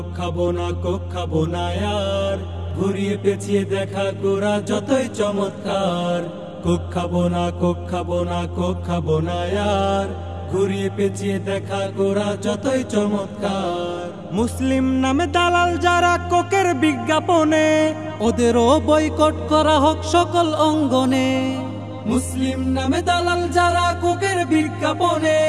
খাবো না কোক খাবো না यार, ঘুরিয়ে পেঁচিয়ে দেখা কোরা যতই চমৎকার। কোক খাবো না কোক খাবো না কোক খাবো না यार, ঘুরিয়ে পেঁচিয়ে দেখা কোরা যতই চমৎকার। মুসলিম নামে দালাল যারা কোকের বিজ্ঞাপনে, ওদেরও বয়কট করা হোক সকল অঙ্গনে। মুসলিম নামে দালাল যারা কোকের বিজ্ঞাপনে,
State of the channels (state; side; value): identical; both; correlation 1.00